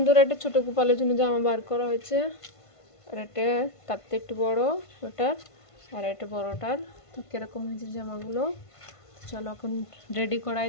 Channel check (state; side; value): late; right; 1.5 ms